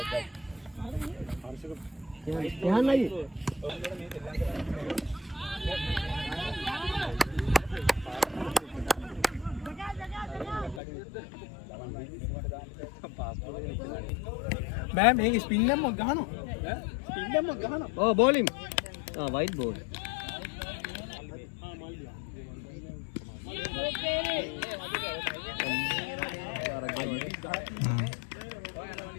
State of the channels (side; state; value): right; drops out; at 10.8 s